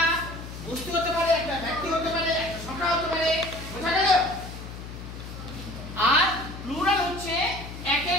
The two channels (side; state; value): left; noise; hum, 11 dB below the sound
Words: বস্তু হতে পারে, একটা ব্যক্তি হতে পারে, একটা সংখ্যা হতে পারে, বোঝা গেল? আর প্লুরাল হচ্ছে একের